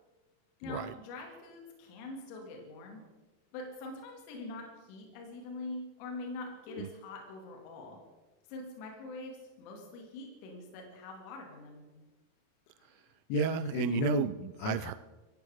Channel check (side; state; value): right; late; 37 ms